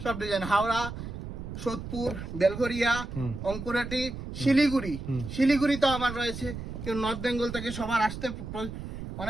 সব ডিজাইন। হাওড়া, সোদপুর, বেলঘরিয়া, অঙ্কুরাটি, শিলিগুড়িতেও আমার রয়েছে। কেউ নর্থ বেঙ্গল থেকে সবার আসতে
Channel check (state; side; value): noise; right; rumble, 8 dB below the sound